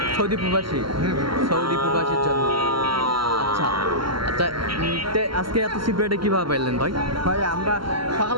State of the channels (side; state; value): left; late; 0.74 ms